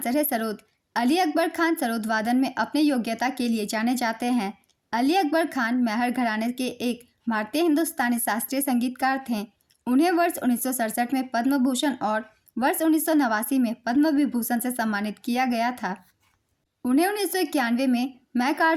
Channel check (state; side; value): identical; both; correlation 1.00